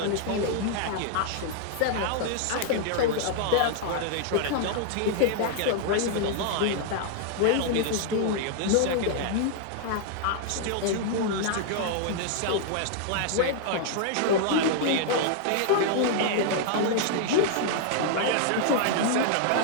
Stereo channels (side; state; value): both; different; correlation -0.01